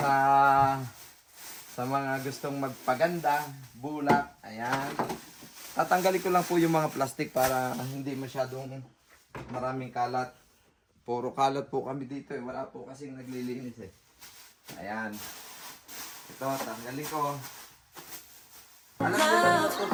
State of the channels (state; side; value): identical; both; correlation 1.00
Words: mga gustong magpaganda. Bulak. Ayan. Tatanggalin ko lang po yung mga plastic para hindi masyadong maraming kalat. Puro kalat po kami dito eh. Wala po kasing naglilinis eh. Ayan. Ito, tanggalin ko. Alam ko lang ito.